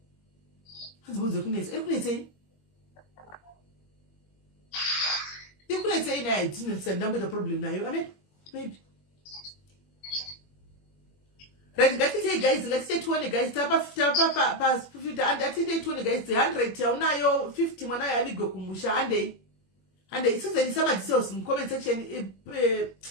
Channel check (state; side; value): late; right; 21 ms